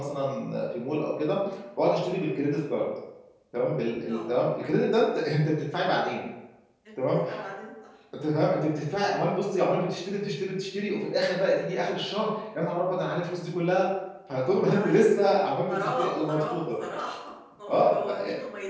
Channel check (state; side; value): identical; both; correlation 1.00